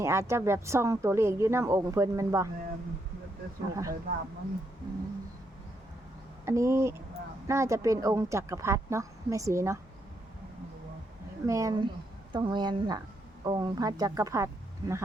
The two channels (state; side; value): normal; both; correlation 0.77